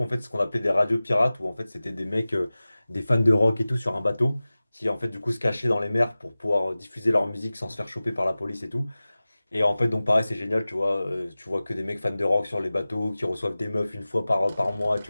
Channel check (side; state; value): both; inverted; correlation -0.97